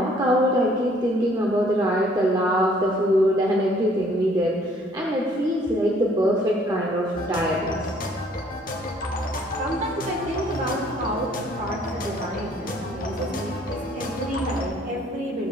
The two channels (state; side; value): normal; both; correlation 0.60